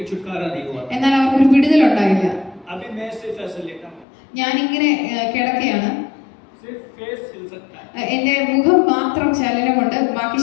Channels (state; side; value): drops out; right; at 4.0 s